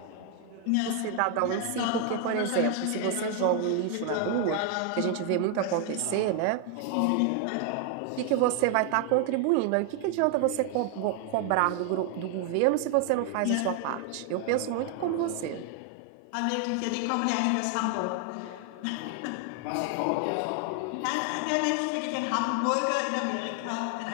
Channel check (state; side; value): different; both; correlation 0.00